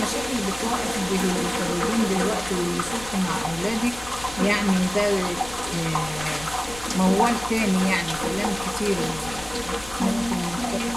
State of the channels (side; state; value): left; noise; rumble, 16 dB below the sound